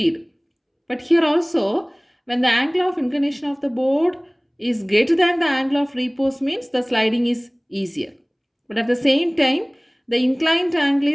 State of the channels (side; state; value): both; identical; correlation 1.00